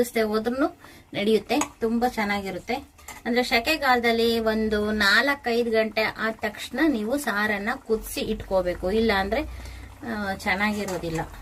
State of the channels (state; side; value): identical; both; correlation 1.00